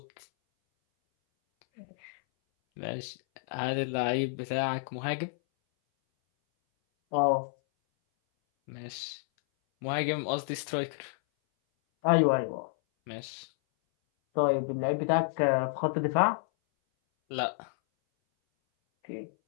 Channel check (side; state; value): right; silent; 58 dB below the other